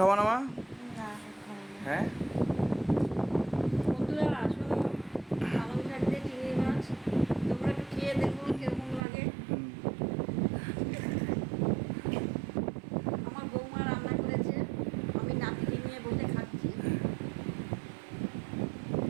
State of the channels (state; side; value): drops out; left; at 9.0 s